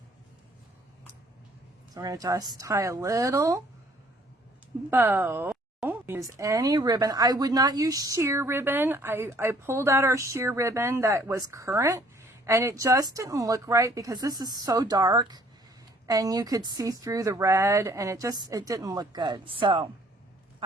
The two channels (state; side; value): normal; both; correlation 0.60